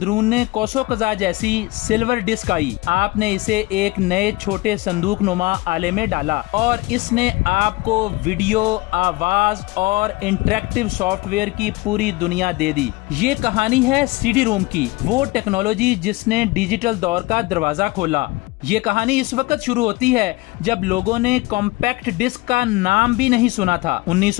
کوسو قزح جیسی سلور ڈسک آئی۔ آپ نے اسے ایک نئے چھوٹے صندوق نما آلے میں ڈالا اور اس نے آپ کو ویڈیو، آواز اور انٹریکٹیو سافٹ ویئر کی پوری دنیا دے دی۔ یہ کہانی ہے سی ڈی روم کی، وہ ٹیکنالوجی جس نے ڈیجیٹل دور کا دروازہ کھولا۔ یہ کہانی اس وقت شروع ہوتی ہے جب لوگوں نے کمپیکٹ ڈسک کا نام بھی نہیں سنا تھا۔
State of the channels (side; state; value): right; quieter; 22.0 dB